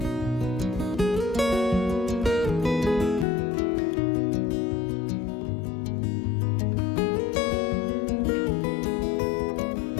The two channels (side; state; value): right; drops out; at 3.2 s